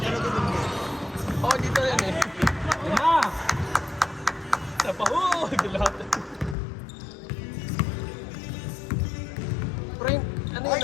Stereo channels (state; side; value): drops out; right; at 6.6 s